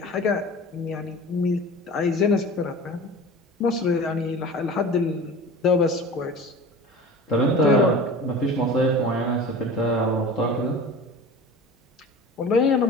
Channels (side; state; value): both; normal; correlation 0.37